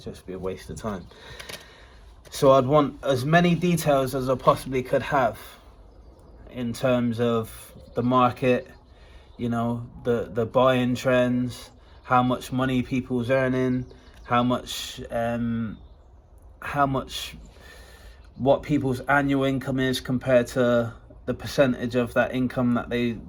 just be a waste of time. So I'd want as many details as I possibly could have in terms of the market, you know, the buying trends, how much money people's earning, what people's annual income is compared to the percentage of that income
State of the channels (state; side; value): identical; both; correlation 1.00